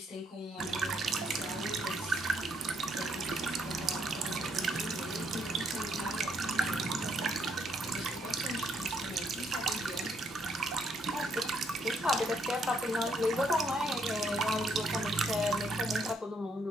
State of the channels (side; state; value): both; normal; correlation 0.72